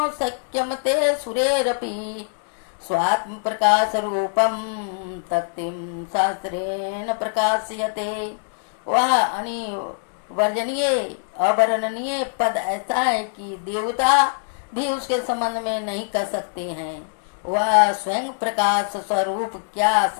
शक्यं ते सुरेरपि स्वात्मप्रकाशरूपं तक्तिं शास्त्रेण प्रकाश्यते। वह अनिवर्जनीय अवर्णनीय पद ऐसा है कि देवता भी उसके संबंध में नहीं कर सकते हैं। वह स्वयं प्रकाश स्वरूप क्या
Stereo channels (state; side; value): silent; right; digital silence